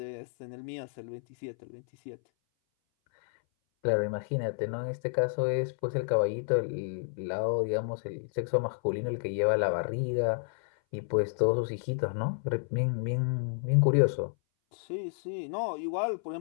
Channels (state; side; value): silent; right; 57 dB below the other